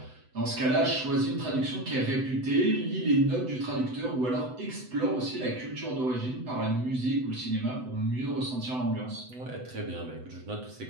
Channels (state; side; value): late; left; 7.9 ms